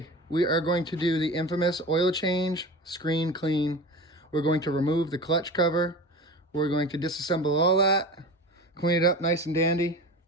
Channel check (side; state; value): both; normal; correlation 0.33